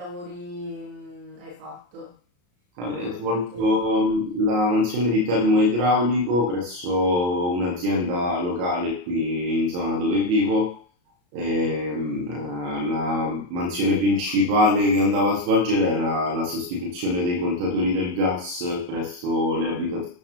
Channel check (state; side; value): late; left; 34 ms